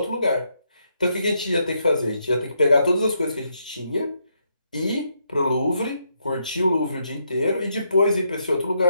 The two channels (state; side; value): inverted; both; correlation -0.78